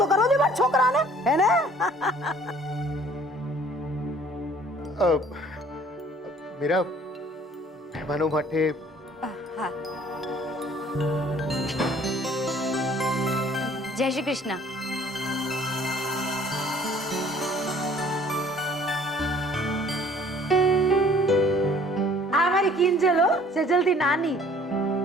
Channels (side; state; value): both; normal; correlation 0.55